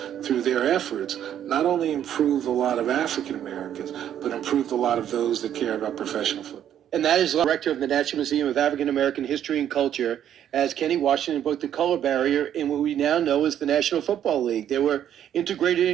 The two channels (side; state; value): left; quieter; 10.2 dB